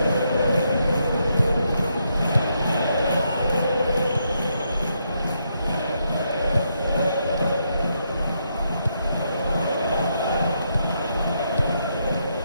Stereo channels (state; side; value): inverted; both; correlation -0.79